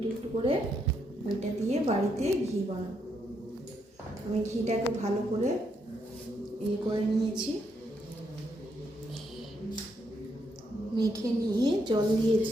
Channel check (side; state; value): both; normal; correlation 0.77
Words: একটু করে ওইটা দিয়ে বাড়িতে ঘি বানাবো। আমি ঘিটাকে ভালো করে করে নিয়েছি, মেখে নিয়ে জল